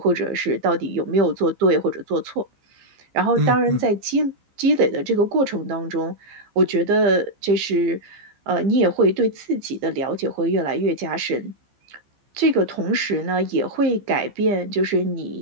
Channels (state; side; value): late; left; 15 ms